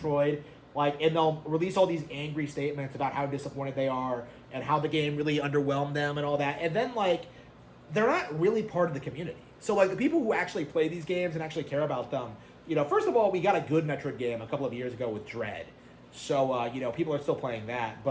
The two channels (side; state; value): both; identical; correlation 1.00